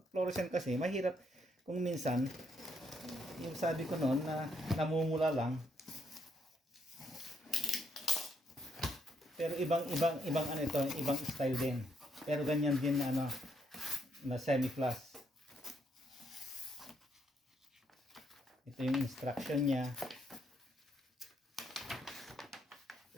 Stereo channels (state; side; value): normal; both; correlation 0.75